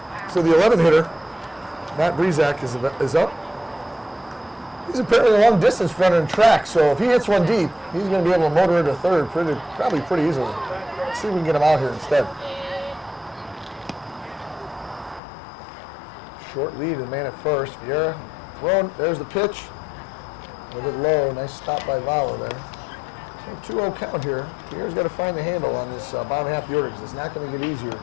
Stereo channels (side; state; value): right; drops out; at 15.2 s